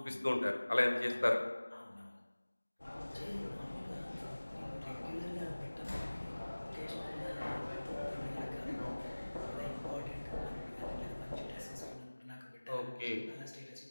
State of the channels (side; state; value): both; inverted; correlation -1.00